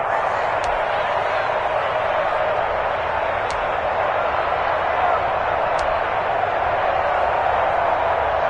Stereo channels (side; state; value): both; identical; correlation 1.00